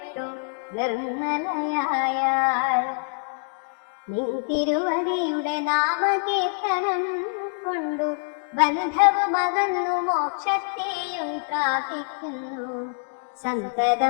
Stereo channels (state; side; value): silent; right; digital silence